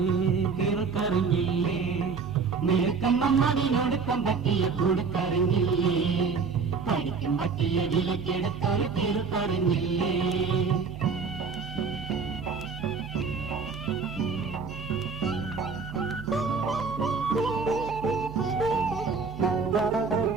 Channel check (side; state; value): left; quieter; 5.1 dB